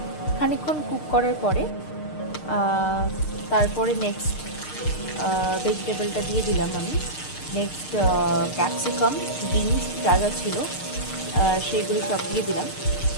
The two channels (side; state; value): right; late; 6.6 ms